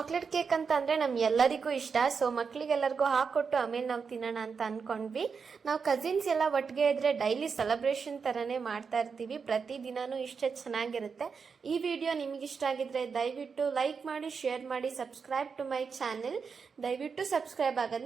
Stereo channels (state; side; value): quieter; left; 5.7 dB